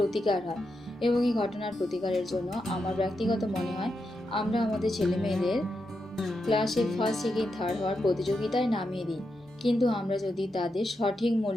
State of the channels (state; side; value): normal; both; correlation 0.86